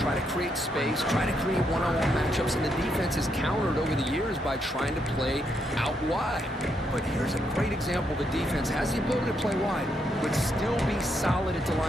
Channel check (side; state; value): both; normal; correlation 0.78